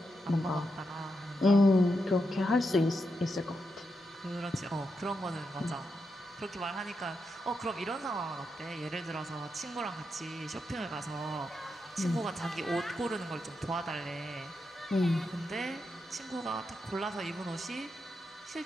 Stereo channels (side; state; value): both; normal; correlation 0.85